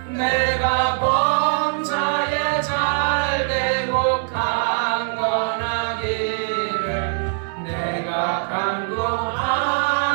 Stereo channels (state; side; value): silent; left; digital silence